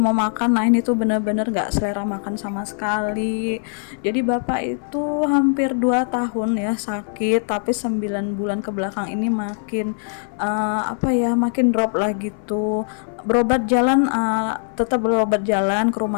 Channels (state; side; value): silent; right; 58 dB below the other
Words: makan. Nah ini tuh bener-bener nggak selera makan sama sekali. Jadi bapak itu hampir 2 tahun ya sakit, tapi 9 bulan ke belakang ini makin makin drop lah gitu. Berobat jalan, tetap berobat jalan ke